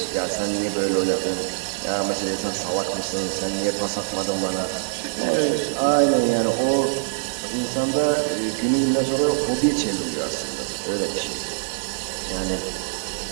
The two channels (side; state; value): left; silent; digital silence